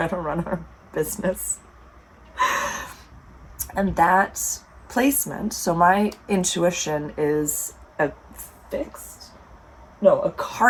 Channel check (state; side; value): identical; both; correlation 1.00